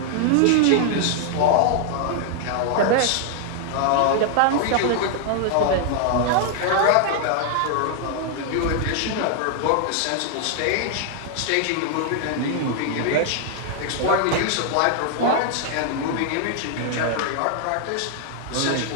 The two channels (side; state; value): both; different; correlation 0.00